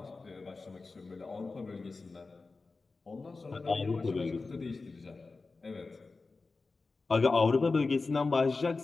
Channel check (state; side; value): quieter; right; 3.9 dB